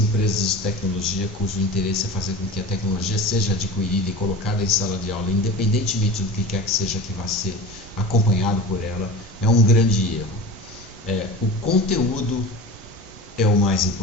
de tecnologia, cujo interesse é fazer com que a tecnologia seja adquirida e colocada em sala de aula, independentemente do que quer que seja que vá ser acompanhado por ela, é um grande erro. O conteúdo é o mais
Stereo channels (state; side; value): normal; both; correlation 0.34